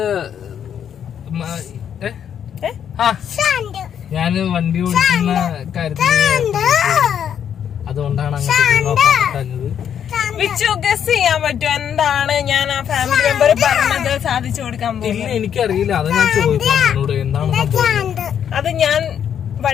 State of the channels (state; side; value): quieter; right; 8.8 dB